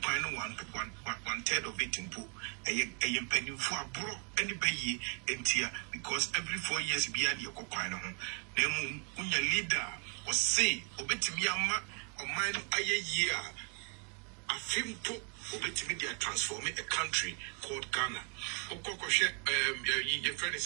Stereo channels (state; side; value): quieter; left; 36.7 dB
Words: one third of it in pool. A penny for abroad any bay and tear because every 4 years beyond your coquino. Then when your leader was say, Obetimiama or mine a year. A film book Obetimia transforming a country called Ghana. Okokoshe, your friend